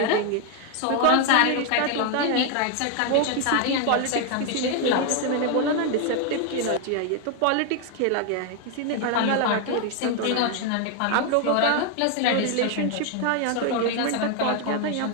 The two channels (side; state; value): both; different; correlation 0.00